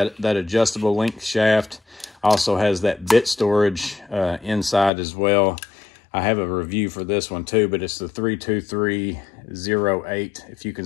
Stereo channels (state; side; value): drops out; right; at 4.9 s